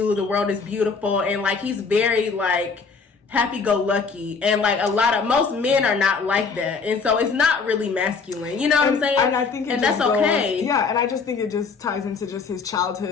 the world is beautiful, and like he's very like happy-go-lucky, and like most men are not like that, and so it's not really masculine. You know what I'm saying? And I think that's okay. Yeah, and I just think it just ties into just his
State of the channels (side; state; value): right; quieter; 5.0 dB